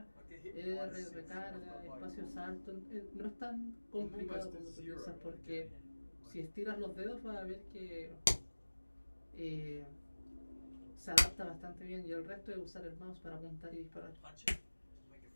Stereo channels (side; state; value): both; inverted; correlation -1.00